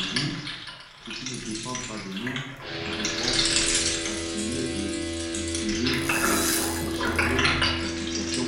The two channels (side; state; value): both; identical; correlation 1.00